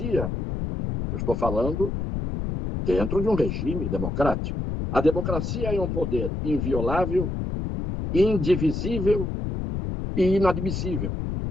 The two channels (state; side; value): noise; left; rumble, 3 dB below the sound